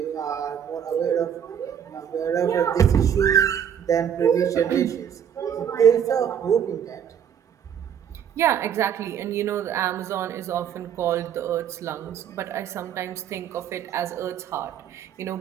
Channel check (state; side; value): quieter; left; 8.6 dB